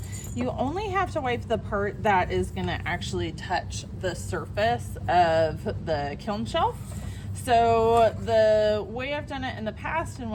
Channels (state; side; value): identical; both; correlation 1.00